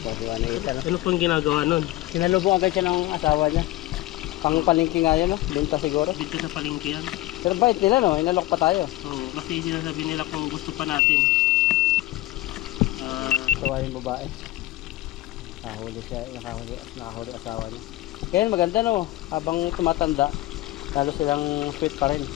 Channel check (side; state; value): right; quieter; 16.5 dB